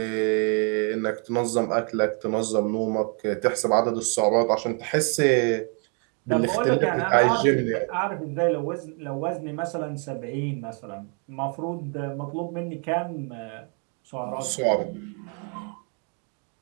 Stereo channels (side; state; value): left; quieter; 39.2 dB